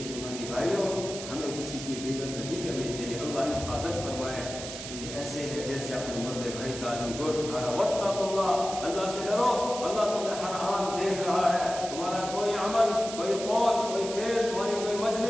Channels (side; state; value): right; noise; hiss, 9 dB below the sound